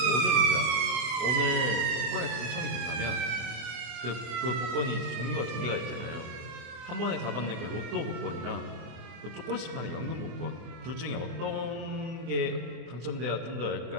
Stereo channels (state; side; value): late; left; 25 ms